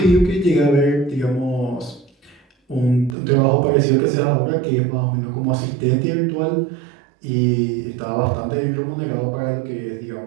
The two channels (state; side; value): drops out; left; at 3.2 s